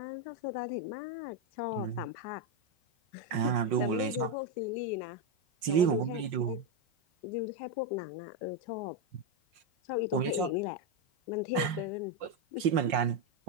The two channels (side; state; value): left; late; 5.6 ms